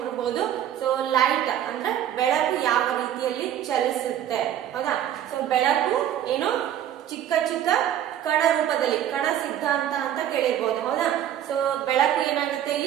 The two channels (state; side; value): quieter; left; 10.7 dB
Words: ಸೊ ಲೈಟ್ ಅಂದ್ರೆ ಬೆಳಕು ಯಾವ ರೀತಿಯಲ್ಲಿ ಚಲಿಸುತ್ತೆ. ಹೌದಾ? ಸೊ ಬೆಳಕು ಏನು ಚಿಕ್ಕ ಚಿಕ್ಕ ಕಣ ರೂಪದಲ್ಲಿ, ಕಣ ಸಿದ್ಧಾಂತ ಅಂತ ಕೇಳಿರ್ಬೋದು. ಹೌದಾ? ಸೊ ಬೆಳಕು ಏನಾಗುತ್ತೆ